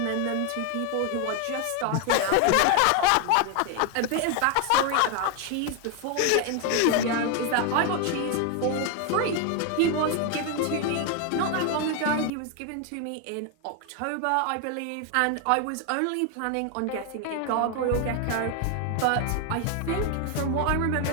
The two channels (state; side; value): different; both; correlation 0.01